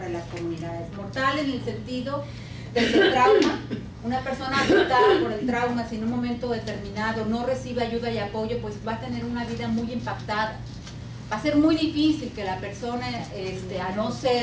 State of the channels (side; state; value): both; identical; correlation 1.00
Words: las comunidades. Mortal en el sentido del trauma. Una persona afectada por el trauma, si en un momento determinado no recibe ayuda y apoyo, pues va a tener una vida muy impactada. Va a ser muy difícil que la persona, a no